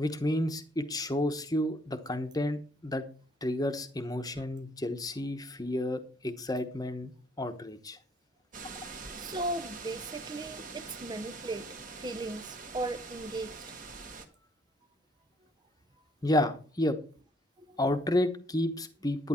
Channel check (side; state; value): both; normal; correlation 0.65